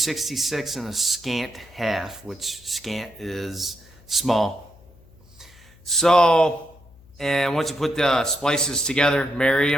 and a scant half, which scant is small. So, and once you put the splices together, marry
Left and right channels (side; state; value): left; noise; hum, 26 dB below the sound